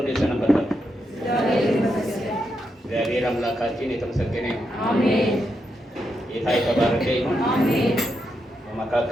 ሰነበታችሁ? እግዚአብሔር አምላካችን የተመሰገነ ይሁን። አሜን። ጌታ የተባረከ ይሁን። አሜን።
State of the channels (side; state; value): both; normal; correlation 0.83